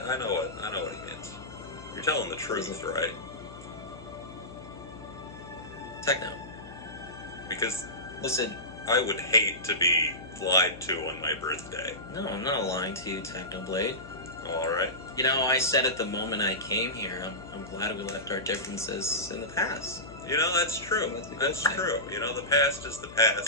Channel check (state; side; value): noise; left; hum, 16 dB below the sound